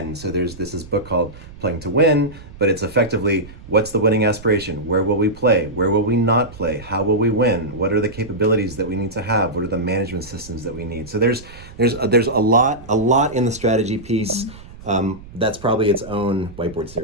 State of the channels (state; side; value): noise; right; rumble, 18 dB below the sound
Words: So there's this book called Playing to Win, but it's effectively what's the winning aspiration? Where will we play? Where will we not play? How will we win? What are the capabilities that we need to have? What are the management systems that we need? So there's a lot in the strategy piece. That's probably its own whiteboard